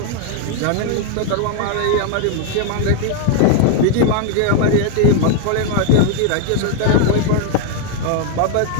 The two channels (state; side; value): different; both; correlation 0.00